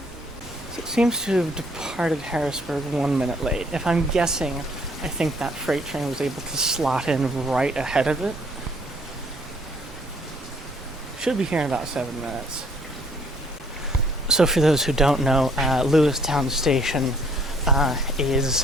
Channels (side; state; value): both; normal; correlation 0.62